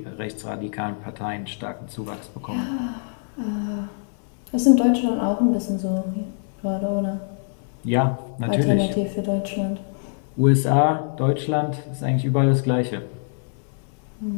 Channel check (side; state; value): right; silent; digital silence